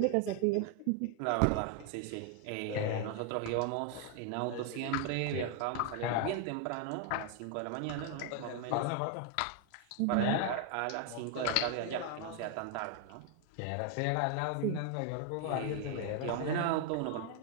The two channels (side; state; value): both; different; correlation 0.00